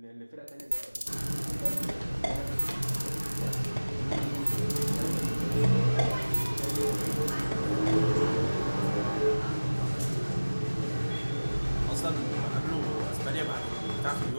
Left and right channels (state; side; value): inverted; both; correlation -1.00